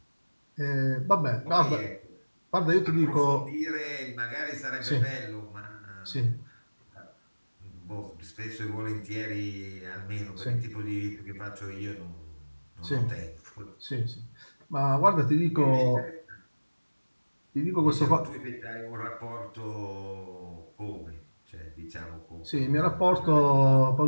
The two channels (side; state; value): both; inverted; correlation -1.00